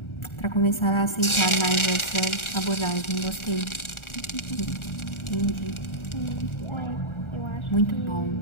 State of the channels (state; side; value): late; right; 1.4 ms